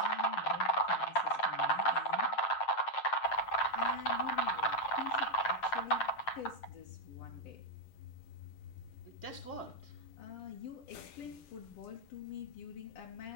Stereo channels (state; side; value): late; right; 8.3 ms